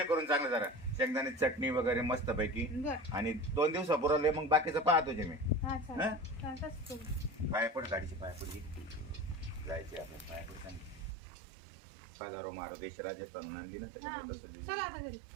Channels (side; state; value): left; drops out; at 11.1 s